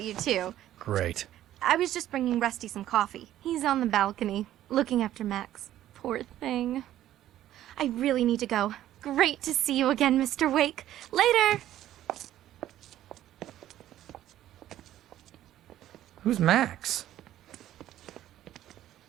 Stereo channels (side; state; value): left; quieter; 12.9 dB